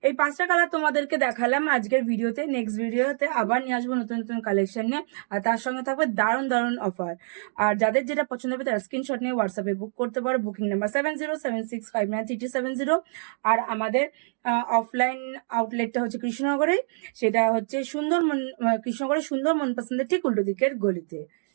এই পাঁচটা কালার তোমাদেরকে দেখালাম আজকের ভিডিওতে। নেক্সট ভিডিওতে আবার নিয়ে আসবো নতুন নতুন কালেকশন নিয়ে, আর তার সঙ্গে থাকবে দারুণ দারুণ অফার। আর যাদের যেটা পছন্দ হবে তারা স্ক্রিনশট নিয়ে হোয়াটসঅ্যাপে বুক করতে পারো, বুকিং নাম্বার 7076593270। আর আমাদের অফলাইন আউটলেটটা হচ্ছে কৃষ্ণনগরে, সেটা হচ্ছে কৃষ্ণনগরের সুন্দর মন পছন্দের ঠিক উল্টো দিকের গলিতে।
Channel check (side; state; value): left; silent; digital silence